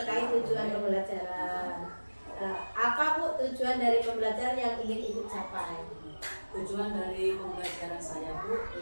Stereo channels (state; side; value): inverted; both; correlation -1.00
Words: tujuan pembelajaran. Apa Bu tujuan dari pembelajaran yang ingin Ibu capai? Tujuan dari pembelajaran saya Bu,